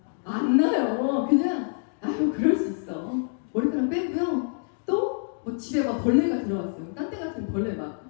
안 나요. 그냥 아유 그럴 수 있어. 머리카락 빼고요. 또 뭐 집에 막 벌레가 들어왔어요. 딴 데 같은 벌레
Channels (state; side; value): silent; right; digital silence